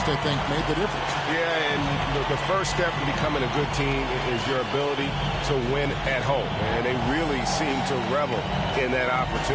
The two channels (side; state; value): both; identical; correlation 1.00